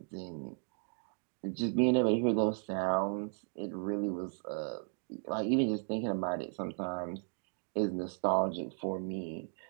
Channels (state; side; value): silent; left; 54 dB below the other